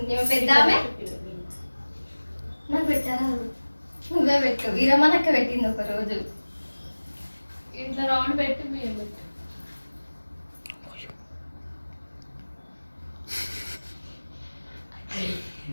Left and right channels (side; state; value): both; inverted; correlation -1.00